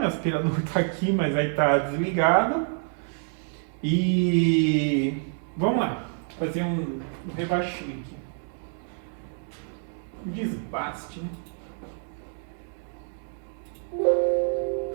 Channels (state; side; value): silent; left; 57 dB below the other